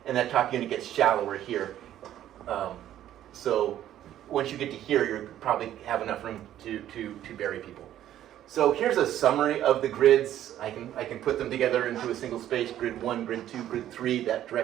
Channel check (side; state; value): left; quieter; 12.0 dB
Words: and that top unit gets shallower here. So once you get to here, you probably have enough room to bury people. So here's a summary of the grids. I can put them together into a single space, grid 1, grid 2, grid 3, that